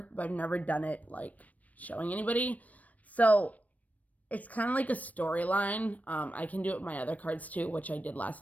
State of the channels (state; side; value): late; right; 0.071 ms